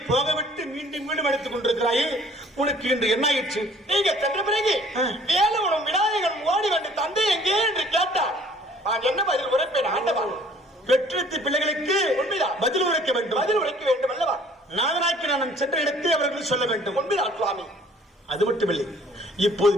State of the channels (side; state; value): both; normal; correlation 0.55